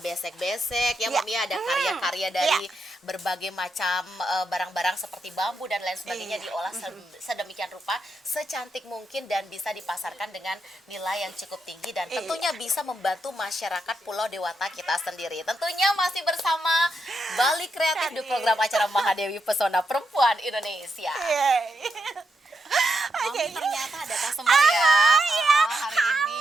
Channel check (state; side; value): normal; both; correlation 0.83